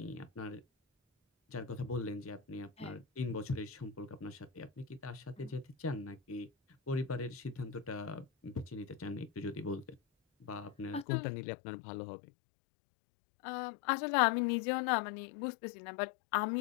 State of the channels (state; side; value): drops out; right; at 11.1 s